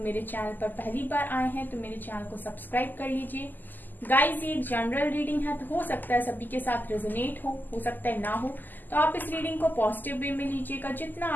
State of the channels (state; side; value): late; right; 0.087 ms